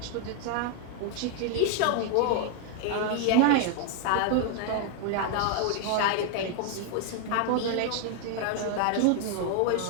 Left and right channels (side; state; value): both; different; correlation 0.00